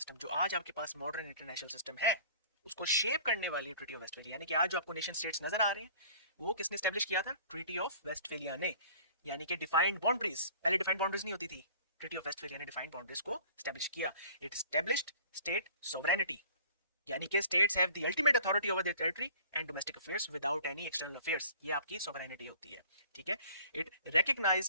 जो आज आपके पास मॉडर्न इंटरनेशनल सिस्टम है उसको शेप करने वाली ट्रीटी ऑफ वेस्टफेलिया, यानी कि आज जो आपको नेशन स्टेट्स नजर आ रहे हैं वो किसने एस्टैब्लिश किया था? ट्रीटी ऑफ वेस्टफेलिया ने, यानी कि डिफाइंड बाउंड्रीज, पहले डिफाइंड बाउंड्रीज नहीं होती थी, ट्रीटी ऑफ वेस्टफेलिया ने डिफाइंड बाउंड्रीज को एस्टैब्लिश किया। इट एस्टैब्लिश्ड स्टेट सोवरेनिटी, यानी कि states have the ultimate authority over their territory and domestic affairs without any external affairs, ये आपकी सोवरेनिटी होती है। ठीक है, इट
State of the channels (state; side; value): inverted; both; correlation -0.48